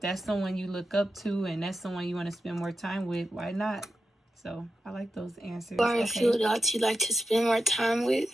someone you look up to and that's someone you want to spend more time with, why not? So I like those answers. Or a few adults you like to spend more time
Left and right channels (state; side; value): normal; both; correlation 0.89